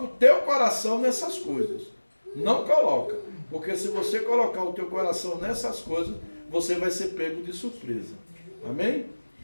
o teu coração nessas coisas. Não coloca. Porque se você colocar o teu coração nessas coisas, você vai ser pego de surpresa. Amém?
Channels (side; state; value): both; inverted; correlation -1.00